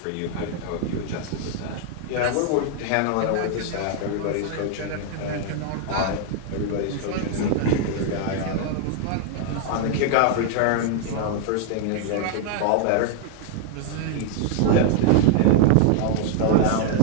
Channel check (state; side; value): different; both; correlation 0.00